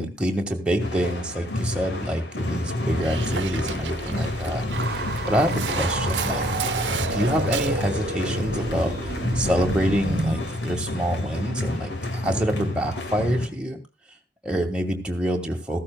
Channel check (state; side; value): normal; both; correlation 0.68